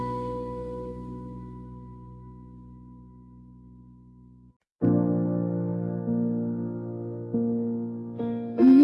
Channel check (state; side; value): identical; both; correlation 1.00